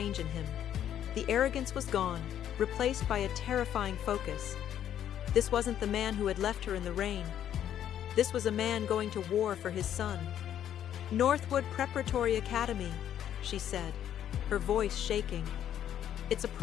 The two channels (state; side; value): quieter; right; 10.4 dB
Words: in him. The arrogance was gone, replaced by a terrifying focus. This wasn't the man who had left her in the rain. This was a man going to war for his son. "Northwood Preparatory Academy," she said, her voice shaking. "It's a